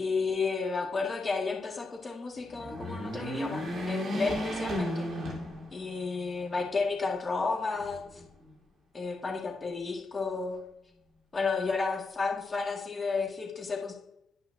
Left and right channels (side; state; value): right; quieter; 3.3 dB